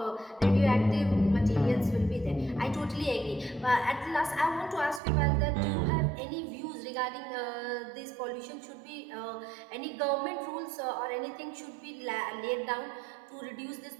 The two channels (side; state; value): left; drops out; at 5.0 s